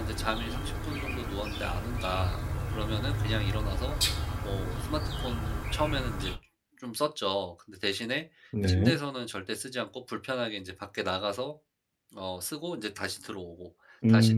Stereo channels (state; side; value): identical; both; correlation 1.00